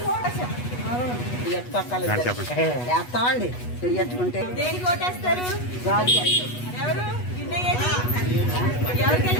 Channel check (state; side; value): late; right; 8.2 ms